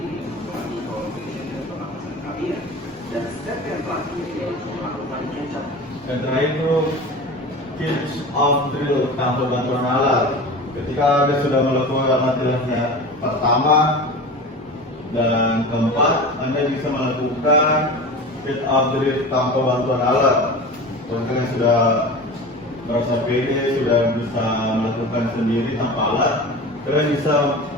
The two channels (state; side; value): normal; both; correlation 0.33